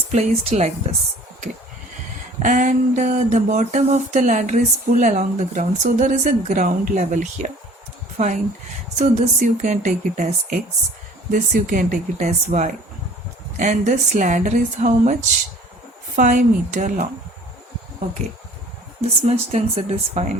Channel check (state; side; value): normal; both; correlation 0.50